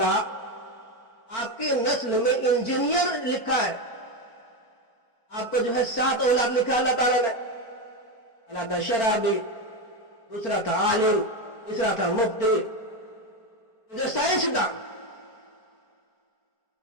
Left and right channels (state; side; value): late; right; 4.4 ms